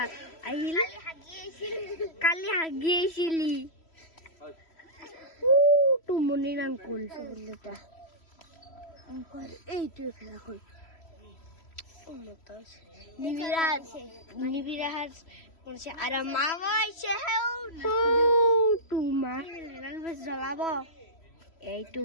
আহিল? কালি হাগি আহিছিলি। মনিৰ আংকুল এইটোৱে ভেলাঘৰ। নিবিৰাজ আৰু মা জ্বলাব। এইটো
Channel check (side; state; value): right; late; 3.0 ms